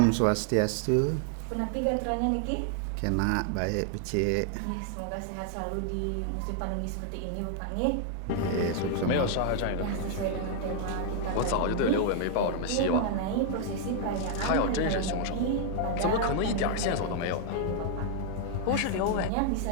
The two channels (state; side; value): different; both; correlation 0.00